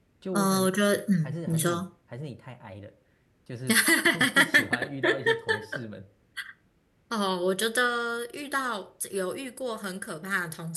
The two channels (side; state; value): both; identical; correlation 1.00